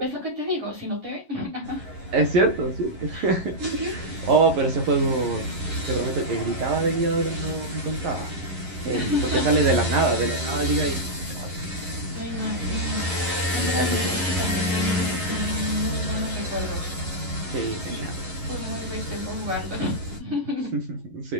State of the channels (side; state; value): left; late; 11 ms